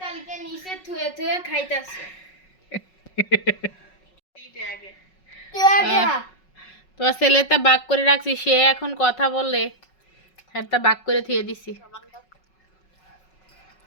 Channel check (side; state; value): right; late; 5.4 ms